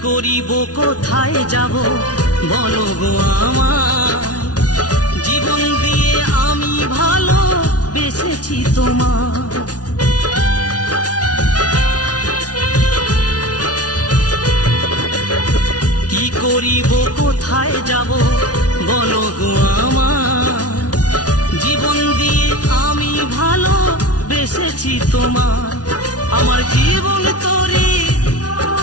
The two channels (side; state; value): right; late; 0.69 ms